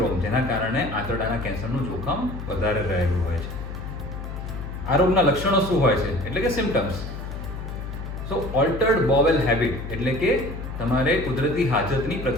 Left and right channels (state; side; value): noise; left; hum, 8 dB below the sound